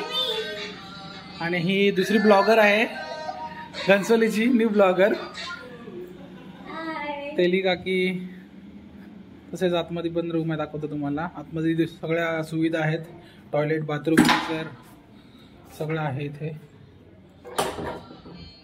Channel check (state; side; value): identical; both; correlation 1.00